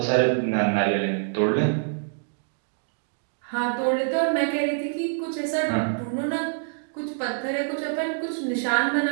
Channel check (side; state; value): left; silent; digital silence